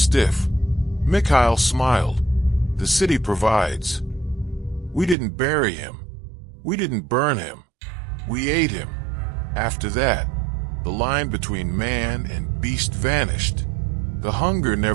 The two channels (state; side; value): drops out; left; at 5.2 s